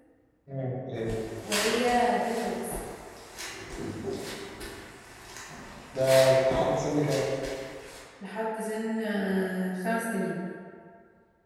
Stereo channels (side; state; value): both; identical; correlation 1.00